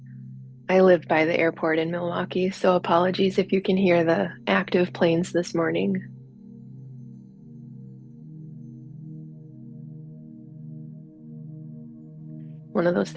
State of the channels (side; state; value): both; identical; correlation 1.00